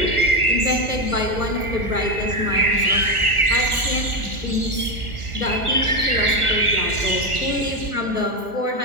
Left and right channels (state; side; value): late; left; 1.4 ms